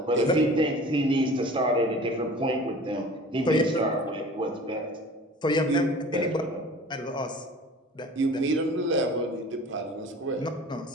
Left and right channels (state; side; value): normal; both; correlation 0.43